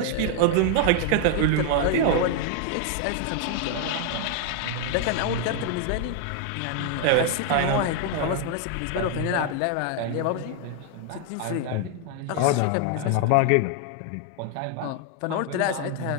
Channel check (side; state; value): both; different; correlation 0.00